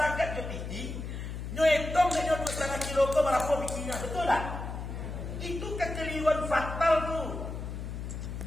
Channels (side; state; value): left; noise; hum, 6 dB below the sound